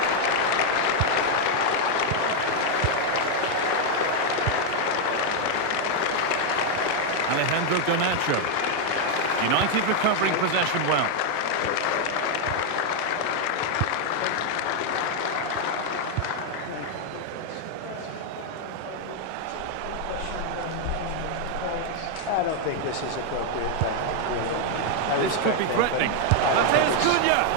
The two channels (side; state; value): both; different; correlation 0.00